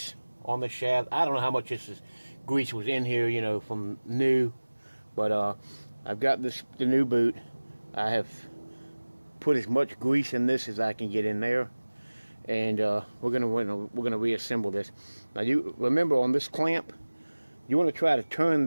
on the shaft. I don't know how much grease was in here, you know, from new, but I've got the new boot. I have put as much grease in this as I can get in there, and we're gonna reassemble this. Now, you remember on this clamp, you want to try to turn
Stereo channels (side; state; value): both; inverted; correlation -1.00